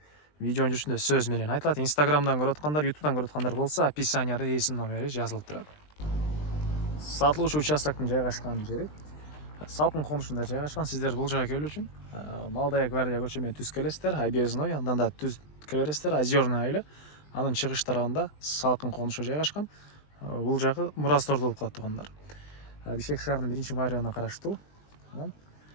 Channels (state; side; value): late; right; 20 ms